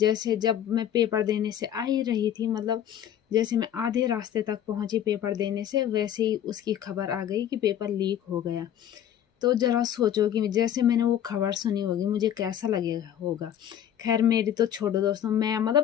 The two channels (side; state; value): right; quieter; 10.3 dB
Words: जब मैं पेपर देने से आ ही रही थी, मतलब जैसे मैं आधे रास्ते तक पहुंची पेपर देने से, वैसे ही उसकी खबर आ गई कि पेपर लीक हो गया। तो जरा सोचो कि जैसे मैंने वो खबर सुनी होगी मुझे कैसा लगेगा होगा। खैर मेरी तो छोड़ो दोस्तों, मैं